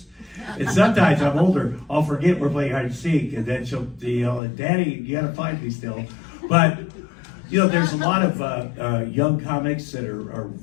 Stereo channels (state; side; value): drops out; right; at 4.4 s